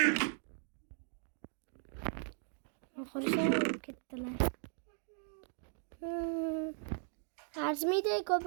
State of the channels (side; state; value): left; silent; 53 dB below the other